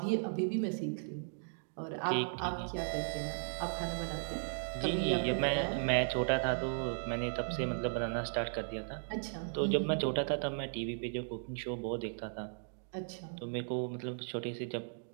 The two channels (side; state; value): left; silent; digital silence